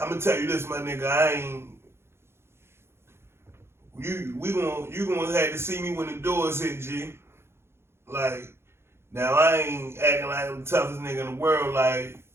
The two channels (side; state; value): left; late; 0.12 ms